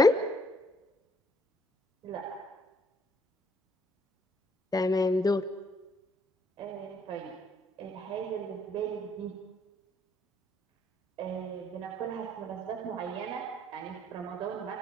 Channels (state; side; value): normal; both; correlation 0.67